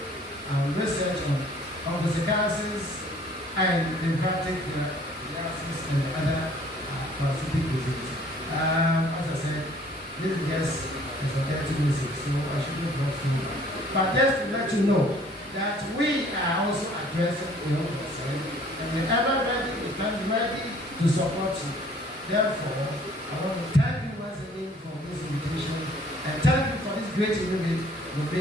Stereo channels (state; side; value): normal; both; correlation 0.56